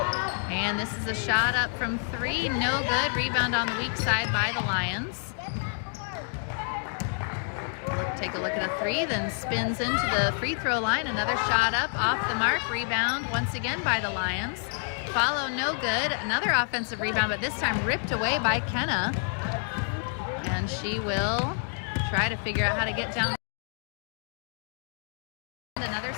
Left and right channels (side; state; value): right; silent; 59 dB below the other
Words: And this is a shot up from three, no good. Rebound on the weak side by the Lions. Take a look at a three, then spins into the free throw line. Another shot up, off the mark. Rebound once again by the Lions. Follow, no good. Another offensive rebound, but this time ripped away by Kenna. And she will try to figure out how to get down. Another